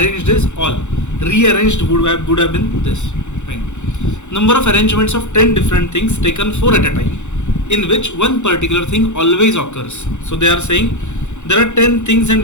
is all. Rearranged would have been this. Fine. Number of arrangements of 10 different things taken 4 at a time, in which one particular thing always occurs. So they are saying there are 10 things and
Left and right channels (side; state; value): right; late; 0.84 ms